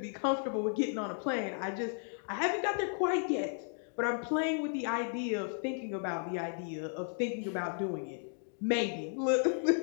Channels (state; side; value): silent; right; 55 dB below the other